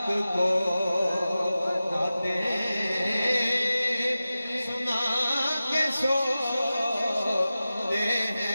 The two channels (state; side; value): inverted; both; correlation -0.95